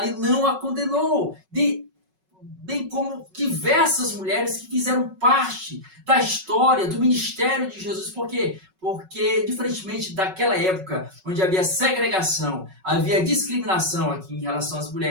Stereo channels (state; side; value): late; left; 5.4 ms